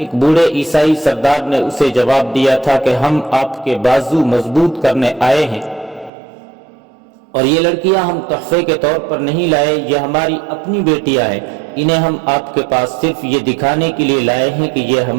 بوڑھے عیسائی سردار نے اسے جواب دیا تھا کہ ہم آپ کے بازو مضبوط کرنے آئے ہیں۔ اور یہ لڑکیاں ہم تحفے کے طور پر نہیں لائے، یہ ہماری اپنی بیٹیاں ہیں، انہیں ہم آپ کے پاس صرف یہ دکھانے کے لیے لائے ہیں کہ یہ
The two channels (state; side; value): drops out; left; at 6.1 s